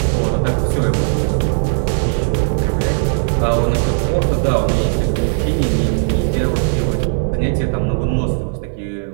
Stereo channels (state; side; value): silent; left; digital silence